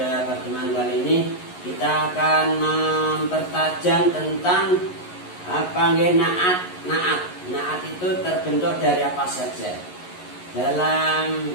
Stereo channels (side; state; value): right; late; 11 ms